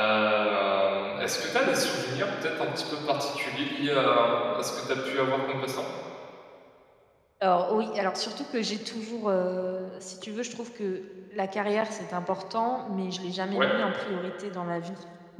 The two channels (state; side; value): identical; both; correlation 1.00